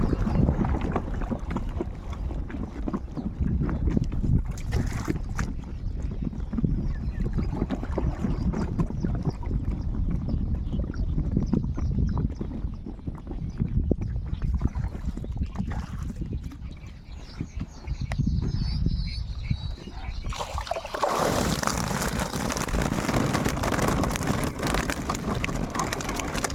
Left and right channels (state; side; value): identical; both; correlation 1.00